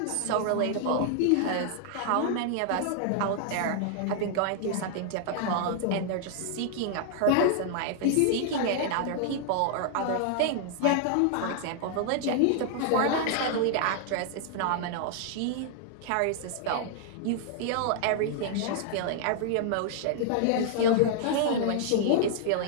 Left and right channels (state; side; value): different; both; correlation 0.00